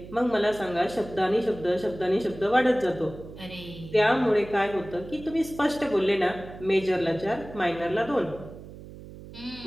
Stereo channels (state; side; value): noise; right; hum, 15 dB below the sound